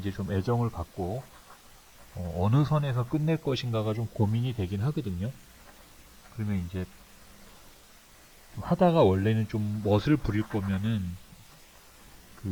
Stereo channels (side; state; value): both; identical; correlation 1.00